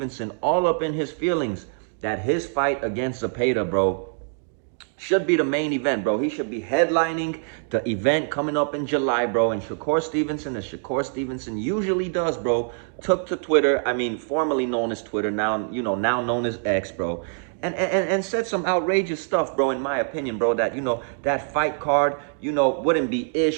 all up in his feelings that his fight against Zepeda, bro, should be the main event, bro. He should be headlining the event coming up in July, bro. And Shakur Stevenson, as Shakur Stevenson usually does, bro, took to Twitter, I mean, formerly known as Twitter, now, now known as X, bro, and said some outrageous stuff, bro, in my opinion, bro, that, that fight card, wouldn't be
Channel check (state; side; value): silent; left; 60 dB below the other